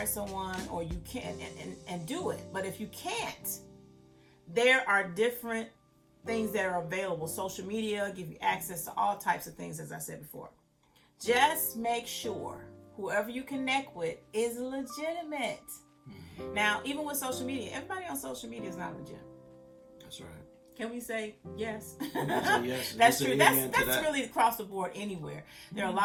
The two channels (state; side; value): identical; both; correlation 1.00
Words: someone, or you can, and do it. But if you can't, there are different things that are available. Social media give you access to all types of things, as I said before. Just make sure whoever you connect with is legitimate. Now, even with social media, everybody on social media is not legit. That's right. Can we say yes? Yes. That's true. That's really across the board anywhere. There are a